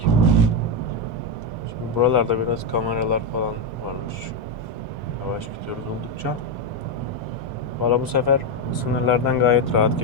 Şimdi buralarda biraz kameralar falan varmış. Yavaş gidiyoruz oldukça. Valla bu sefer sınırlardan gayet rahat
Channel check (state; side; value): normal; both; correlation 0.06